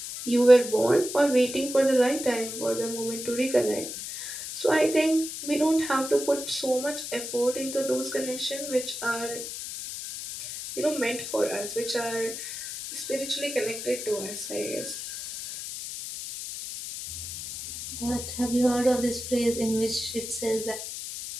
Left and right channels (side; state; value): left; noise; hiss, 8 dB below the sound